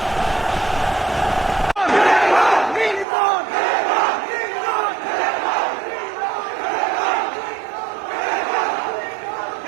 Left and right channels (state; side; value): drops out; left; at 3.1 s